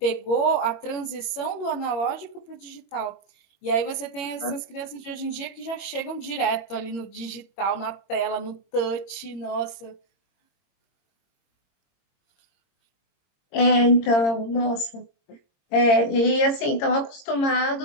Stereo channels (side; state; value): right; late; 21 ms